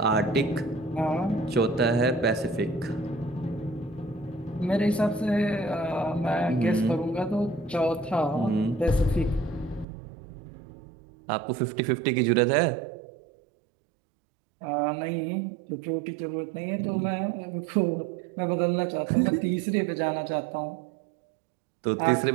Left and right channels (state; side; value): drops out; left; at 9.9 s